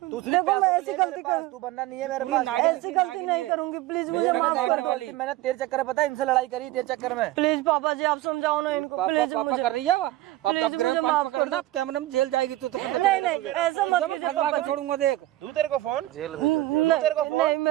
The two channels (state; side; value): quieter; left; 16.3 dB